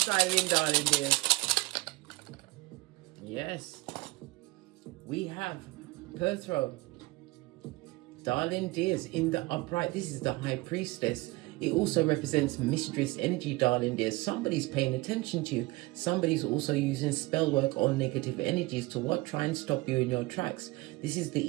dive in, darling dears. Yes, we have Perthrow. Darling dears, in the upright, this is the High Priestess. It also represents mistress energy, darling dears. Somebody's paying attention to you. Somebody's also using spell work or negative energies to what? Try and stop you in your tracks. This is the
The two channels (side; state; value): left; quieter; 21.9 dB